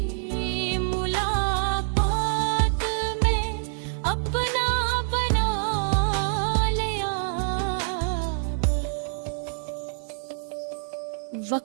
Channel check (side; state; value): left; silent; 61 dB below the other